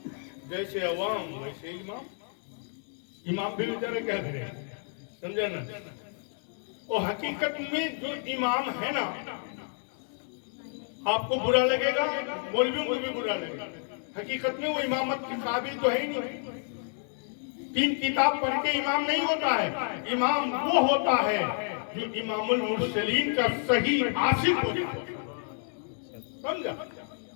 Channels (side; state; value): right; silent; 56 dB below the other